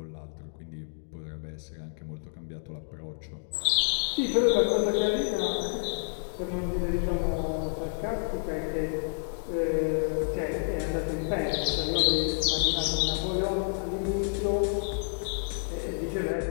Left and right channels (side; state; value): right; silent; digital silence